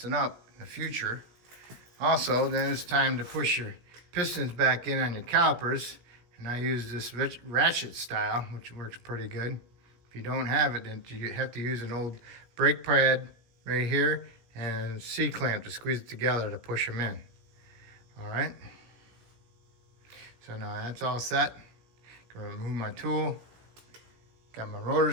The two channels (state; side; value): late; left; 17 ms